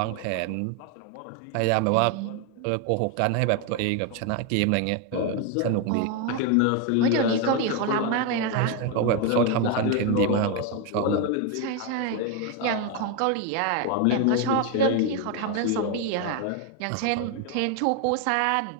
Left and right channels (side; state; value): both; different; correlation 0.01